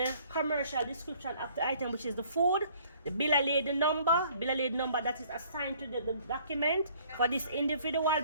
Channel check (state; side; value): inverted; both; correlation -0.58